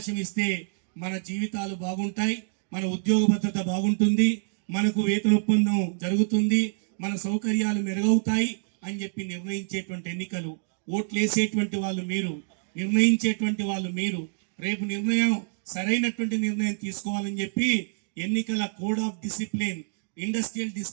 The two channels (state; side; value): silent; left; digital silence